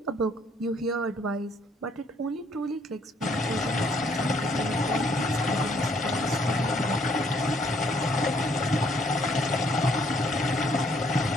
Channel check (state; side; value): normal; both; correlation 0.66